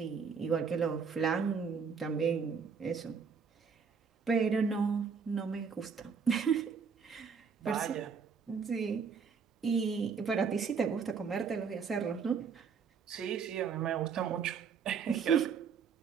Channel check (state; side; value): quieter; left; 6.0 dB